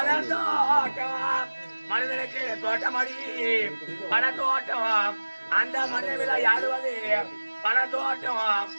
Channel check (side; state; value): both; inverted; correlation -1.00